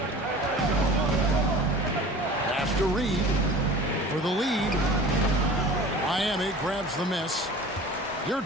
Pass to Reed for the lead. Miami grabs the miss.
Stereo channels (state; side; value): normal; both; correlation 0.41